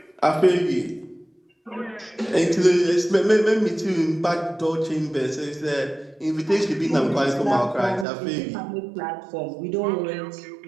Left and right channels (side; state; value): left; drops out; at 8.1 s